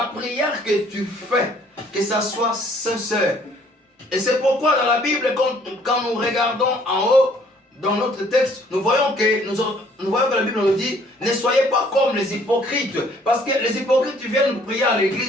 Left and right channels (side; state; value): both; normal; correlation 0.60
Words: prière que tu fais, que ça soit sincère. Et c'est pourquoi dans la Bible, quand nous regardons en haut, dans notre texte, nous voyons que la Bible nous dit, ne soyez pas comme les hypocrites. Parce que les hypocrites viennent prier à